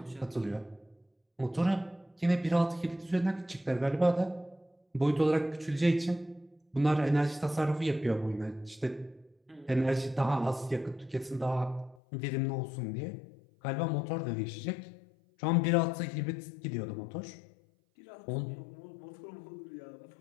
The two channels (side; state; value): right; drops out; at 12.0 s